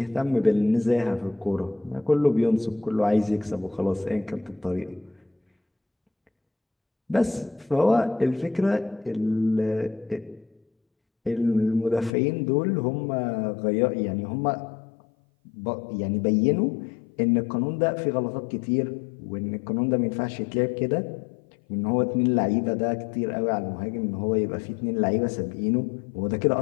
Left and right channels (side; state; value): right; drops out; at 12.1 s